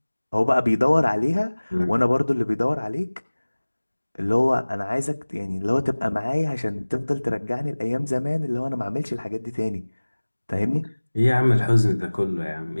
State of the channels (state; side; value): inverted; both; correlation -1.00